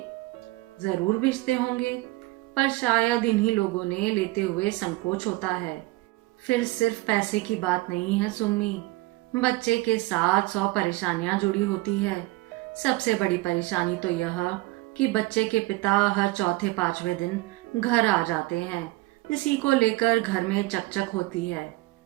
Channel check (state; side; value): quieter; left; 20.9 dB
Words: जरूर भेजते होंगे, पर शायद इन्हीं लोगों ने लेते हुए संकोच होता है। फिर सिर्फ पैसे की बात नहीं है सुम्मी, बच्चे के साथ 100 परेशानियां जुड़ी होती है। सबसे बड़ी परेशानी तो यह कि बच्चे के पिता हर चौथे पांचवें दिन घर आ जाते हैं। इसी को लेकर घर में चकचक होती है,